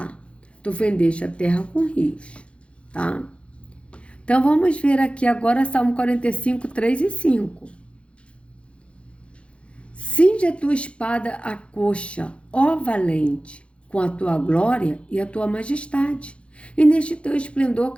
tu fendeste a terra com rios. Tá? Então vamos ver aqui agora Salmo 45, 3 e 5. Cinge a tua espada à coxa, ó valente, com a tua glória e a tua majestade. E neste teu esplendor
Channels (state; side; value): late; right; 0.060 ms